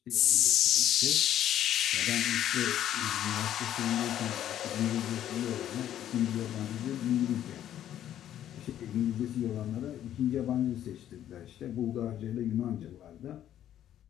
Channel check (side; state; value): right; quieter; 11.2 dB